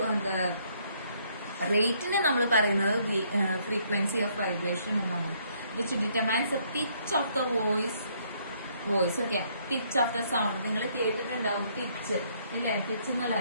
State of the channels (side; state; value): both; inverted; correlation -0.68